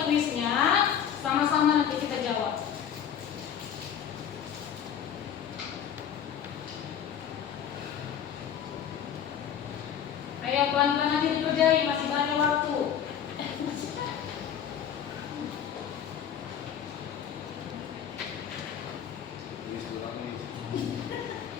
kuisnya sama-sama nanti kita jawab. Ayo pelan-pelan nanti dikerjain, masih banyak waktu.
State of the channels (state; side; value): quieter; right; 8.9 dB